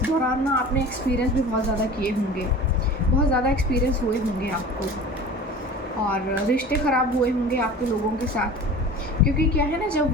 दौरान ना आपने एक्सपीरियंस भी बहुत ज़्यादा किए होंगे, बहुत ज़्यादा एक्सपीरियंस हुए होंगे आपको, और रिश्ते ख़राब हुए होंगे आपके लोगों के साथ। क्योंकि क्या है ना, जब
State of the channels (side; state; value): both; normal; correlation 0.38